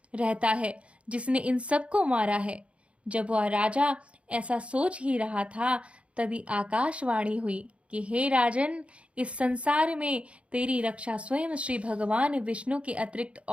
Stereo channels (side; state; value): left; late; 0.061 ms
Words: रहता है जिसने इन सबको मारा है। जब वह राजा ऐसा सोच ही रहा था तभी आकाशवाणी हुई कि हे राजन, इस संसार में तेरी रक्षा स्वयं श्री भगवान विष्णु के अतिरिक्त